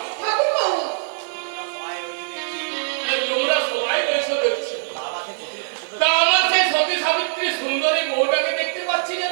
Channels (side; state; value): left; silent; 63 dB below the other